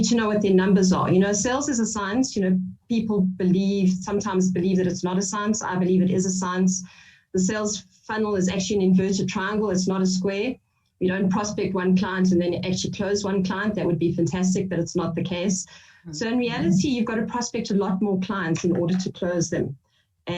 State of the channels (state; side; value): identical; both; correlation 1.00